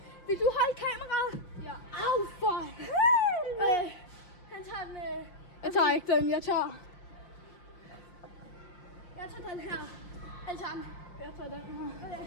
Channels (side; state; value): right; late; 5.5 ms